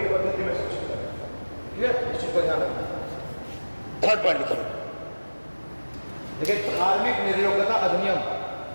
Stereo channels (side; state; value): both; inverted; correlation -1.00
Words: पद्धति में शिक्षित करना। ठीक है, इस चीज को ध्यान रखना। थर्ड पॉइंट लिखिए, देखिए धार्मिक निर्योग्यता अधिनियम,